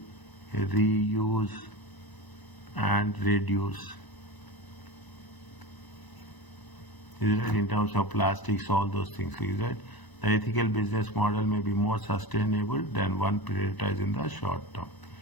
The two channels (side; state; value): right; late; 1.0 ms